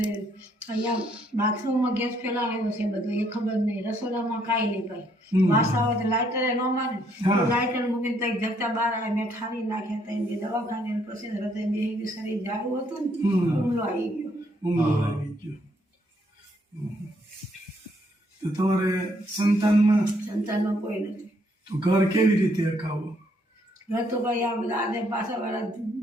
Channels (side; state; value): both; normal; correlation 0.70